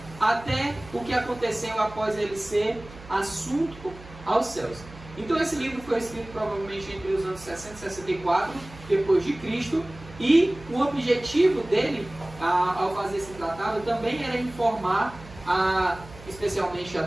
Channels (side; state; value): right; noise; hum, 18 dB below the sound